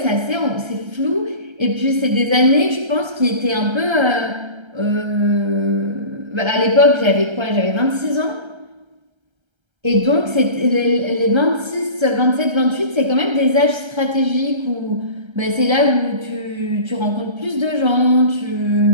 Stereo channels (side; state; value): left; late; 1.3 ms